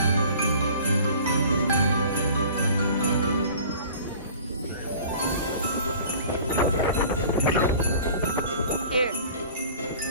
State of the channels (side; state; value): both; inverted; correlation -0.45